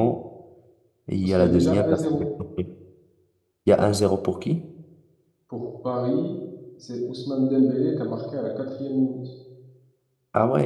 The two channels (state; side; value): identical; both; correlation 1.00